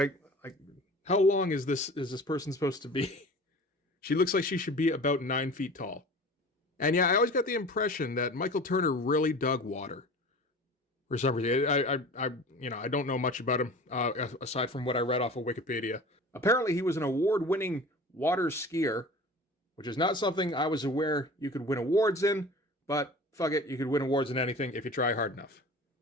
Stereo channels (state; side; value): normal; both; correlation 0.39